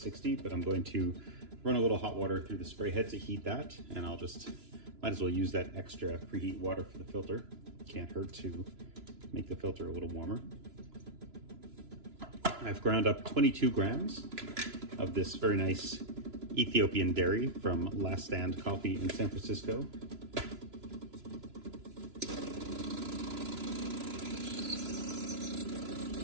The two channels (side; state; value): left; late; 2.9 ms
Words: but I'm going to run a little hot water through the spray head to heat that, and I'll just might as well use that extra preheat water for the filter. Can't hurt to make the filter a little warmer. I've ground up 22 grams of this very nice Ethiopian dairy from Last Stand Coffee in San Francisco.